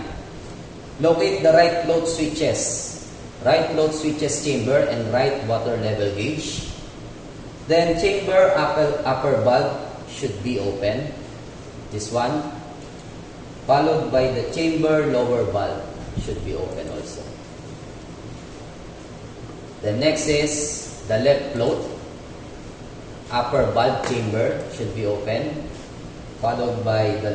Locate the right float switches. Right float switches chamber and right water level gauge. Then chamber upper valve should be open. This one. Followed by the chamber lower valve should be open also. The next is the left float upper valve chamber should be open. Followed by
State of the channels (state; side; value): identical; both; correlation 1.00